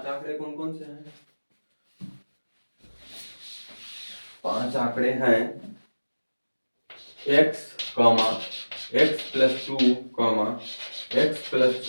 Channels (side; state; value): both; inverted; correlation -1.00